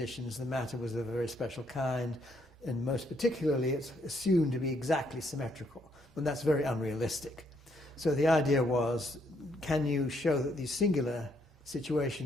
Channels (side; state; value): both; normal; correlation 0.72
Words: the matter was of a very special kind, and most particularly it's assumed to be exactly symmetrical, and that's very unrealistic. So the idea was, can you show that these singular